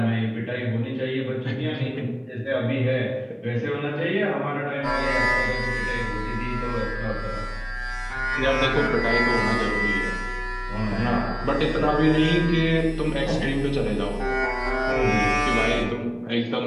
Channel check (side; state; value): both; identical; correlation 1.00